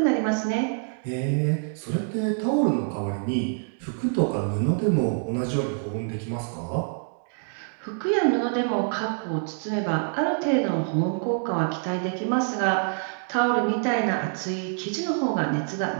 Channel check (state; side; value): silent; left; 61 dB below the other